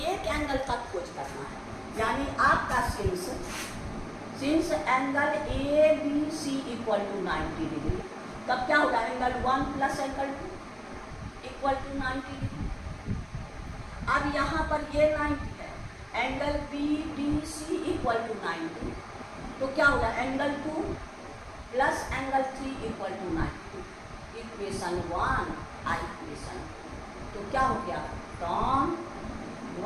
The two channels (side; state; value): both; identical; correlation 1.00